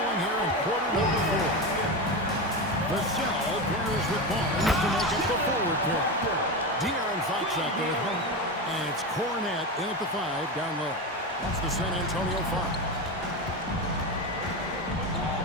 here in quarter number 4. Vassell pairs with Barnes to make up the forward pair. De'Aaron Fox out there at home. And it's Cornette in at the 5 down low. That's the San Antonio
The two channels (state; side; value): normal; both; correlation 0.19